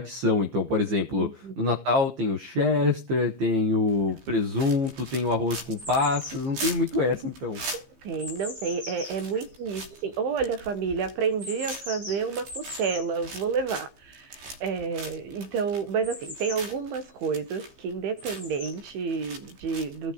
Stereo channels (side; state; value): left; late; 15 ms